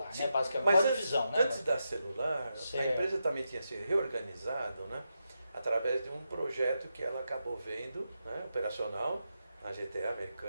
Sim, né? Basicamente, mas uma antes, divisão, né? antes da celular, Certo. a empresa também tinha se reorganizado, né? Através de um projeto que ela acabou vendo, né? Operacional, na GTA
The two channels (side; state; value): both; inverted; correlation -0.86